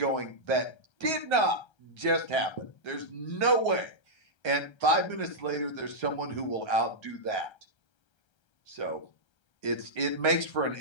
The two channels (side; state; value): right; late; 1.3 ms